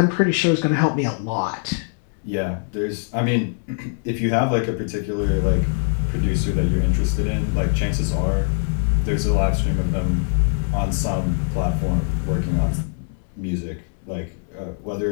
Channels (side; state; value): right; silent; 64 dB below the other